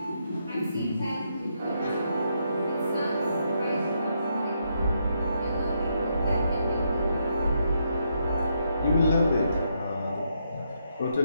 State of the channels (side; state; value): both; inverted; correlation -0.78